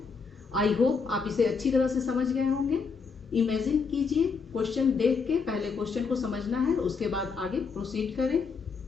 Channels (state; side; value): quieter; right; 5.2 dB